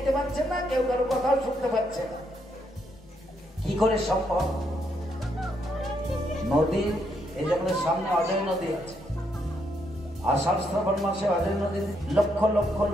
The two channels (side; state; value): both; normal; correlation 0.76